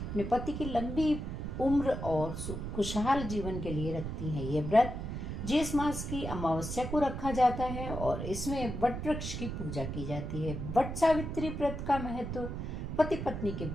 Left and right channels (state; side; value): noise; right; rumble, 5 dB below the sound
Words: पति की लंबी उम्र और खुशहाल जीवन के लिए रखती हैं, ये व्रत ज्येष्ठ मास की अमावस्या को रखा जाता है और इसमें वट वृक्ष की पूजा की जाती है। वट सावित्री व्रत का महत्व पति पत्नी के